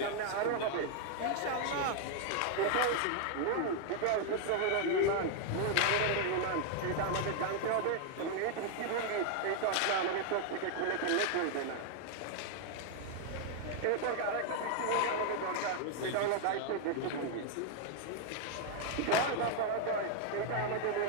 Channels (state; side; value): different; both; correlation 0.00